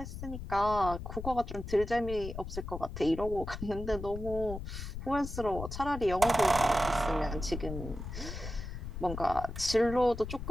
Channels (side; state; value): left; noise; rumble, 8 dB below the sound